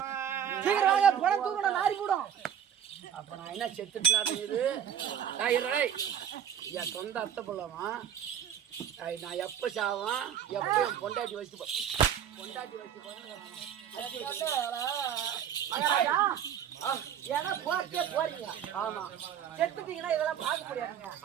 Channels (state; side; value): quieter; left; 9.1 dB